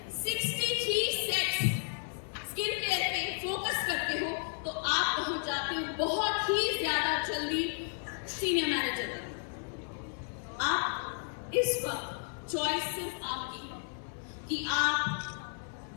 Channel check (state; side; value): silent; right; 56 dB below the other